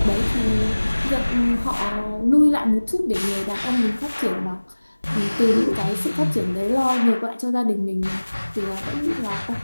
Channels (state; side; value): inverted; both; correlation -1.00